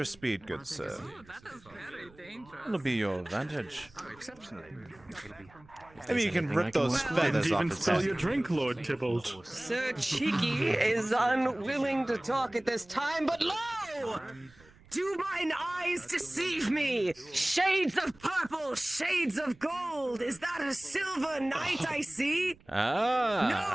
speed, good sir. It'll be your advantage. Maybe you can rip those feathers off Even his spill head. your drink, Lord Tybalt. Sir Cheeky is unwilling to talk at this time, but lo! Do mine eyes deceive me? Shades of purple, shades of gold. Is that a silver knight I see? Ah.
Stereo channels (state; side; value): noise; right; rumble, 26 dB below the sound